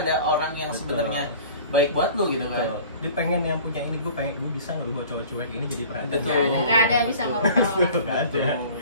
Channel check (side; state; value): both; inverted; correlation -0.45